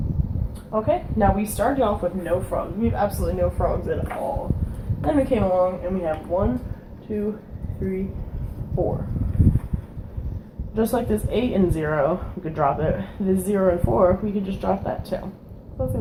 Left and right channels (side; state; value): both; identical; correlation 1.00